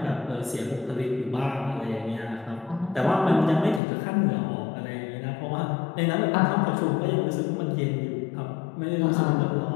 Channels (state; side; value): drops out; right; at 3.8 s